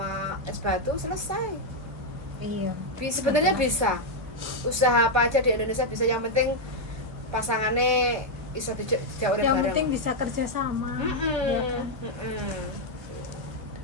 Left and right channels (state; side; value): late; left; 1.2 ms